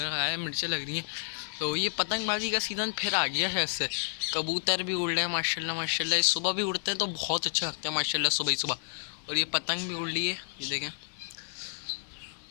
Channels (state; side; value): silent; right; digital silence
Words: आया, मिर्चें लग रही हैं। तो ये पतंगबाजी का सीज़न फिर आ गया है। इससे कबूतर भी उड़ रहे हैं माशाल्लाह माशाल्लाह। सुबह भी उड़ते हैं तो बहुत अच्छे लगते हैं माशाल्लाह सुबह ही सुबह। और ये पतंग भी उड़ रही है, ये देखें।